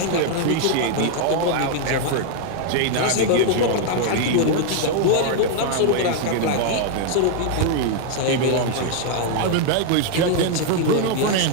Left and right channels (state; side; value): different; both; correlation 0.00